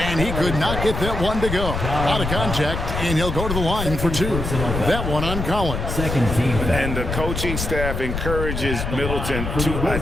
and he could not get that one to go. Out of contact, and he'll go to the line for 2. That one on Collins. Second team. And the coaching staff encourages Middleton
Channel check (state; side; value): noise; left; rumble, 4 dB below the sound